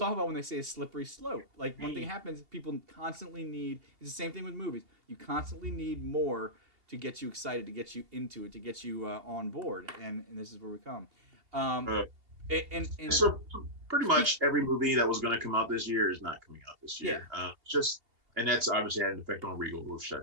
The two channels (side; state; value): left; late; 2.8 ms